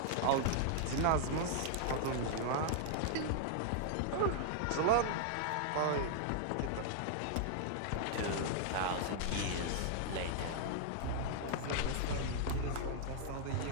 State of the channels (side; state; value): both; different; correlation -0.01